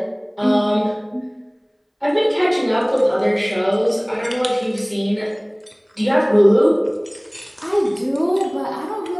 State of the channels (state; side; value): identical; both; correlation 1.00